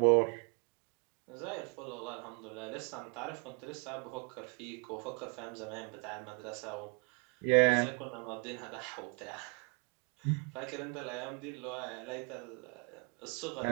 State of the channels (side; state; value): left; quieter; 36.2 dB